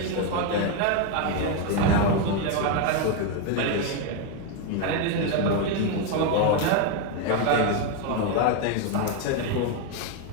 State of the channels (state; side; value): different; both; correlation 0.02